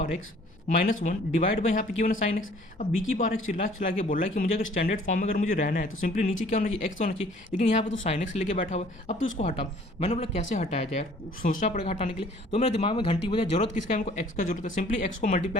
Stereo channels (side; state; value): both; normal; correlation 0.55